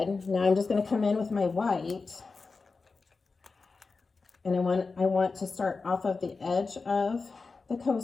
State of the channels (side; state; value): right; quieter; 4.3 dB